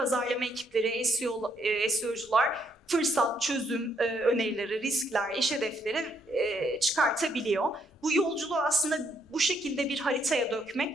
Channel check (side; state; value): both; normal; correlation 0.72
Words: ekipleri, SEO'cular fırsat, çözüm önerileri, riskler, iş hedefleri çıkartabiliyor. Bu yolculuğu aslında bu şekilde bir haritaya